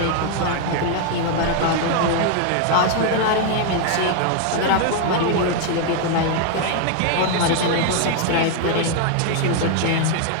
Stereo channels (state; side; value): different; both; correlation 0.00